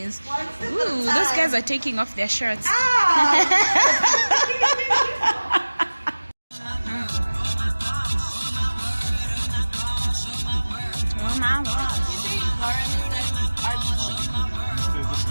Ooh, those guys are taking off their shirts. Oh my God.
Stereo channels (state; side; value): inverted; both; correlation -1.00